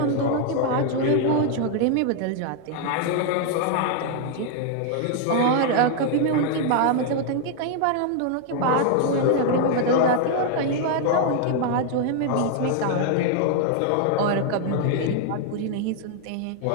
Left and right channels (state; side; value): different; both; correlation 0.00